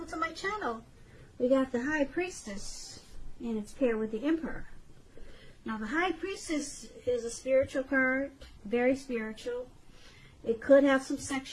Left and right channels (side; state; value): both; identical; correlation 1.00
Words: to my channel. We got the High Priestess, and it's paired with the Emperor. Now, the High Priestess is a spiritual card, very spiritual. It could have some